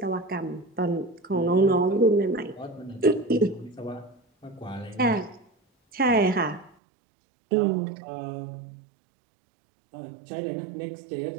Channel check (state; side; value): drops out; left; at 6.7 s